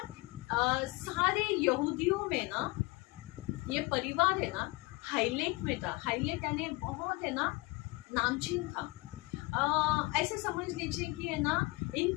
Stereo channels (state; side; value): quieter; right; 23.9 dB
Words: सारे यहूदियों में ना ये परिवार है ना हाईलाइट में था। हाईलाइट यानी बहुत है ना नामचीन था। ऐसे समझ लीजिए कि है ना